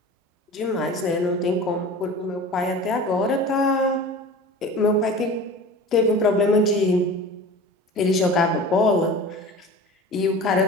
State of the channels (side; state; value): both; normal; correlation 0.37